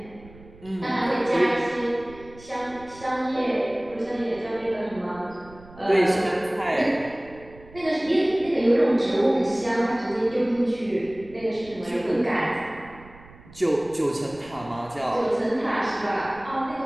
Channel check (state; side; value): noise; right; rumble, 21 dB below the sound